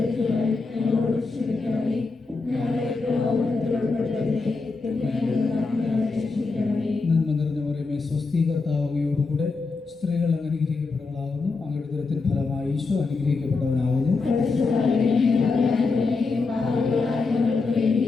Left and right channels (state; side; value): quieter; right; 4.1 dB